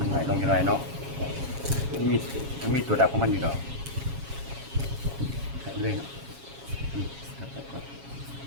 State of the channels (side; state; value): left; late; 7.3 ms